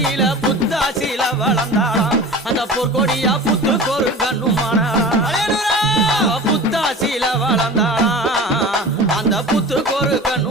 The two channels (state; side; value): normal; both; correlation 0.36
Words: புத்தாசில வளர்ந்தாளாம் அந்த பொற்கொடியா புத்துக்கொரு கண்ணுமானா புத்தாசில வளர்ந்தாளாம் அந்த புத்துக்கொரு